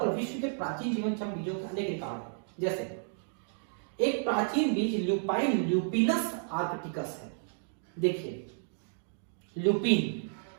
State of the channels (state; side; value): silent; left; digital silence